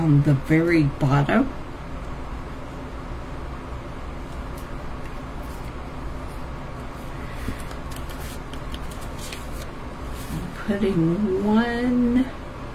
the very bottom. I'm putting one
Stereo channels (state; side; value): identical; both; correlation 1.00